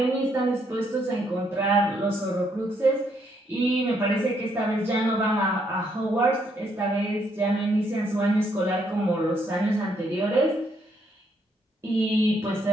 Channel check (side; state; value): both; normal; correlation 0.73